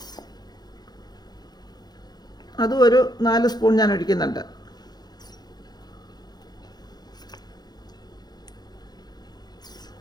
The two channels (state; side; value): late; right; 0.20 ms